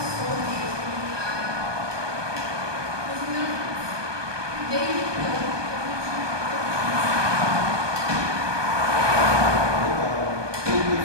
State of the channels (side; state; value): left; late; 1.2 ms